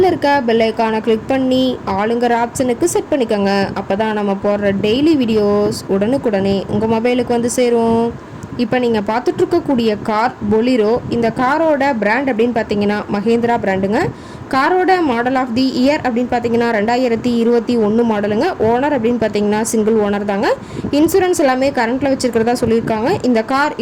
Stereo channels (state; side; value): identical; both; correlation 1.00